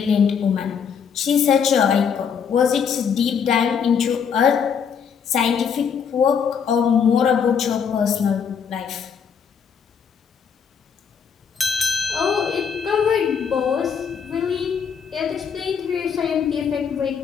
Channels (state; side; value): quieter; right; 6.9 dB